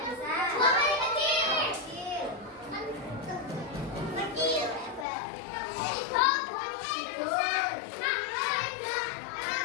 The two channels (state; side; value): drops out; right; at 5.1 s